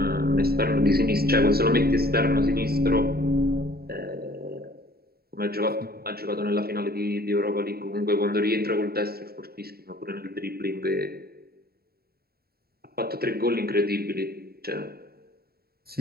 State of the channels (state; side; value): late; left; 0.45 ms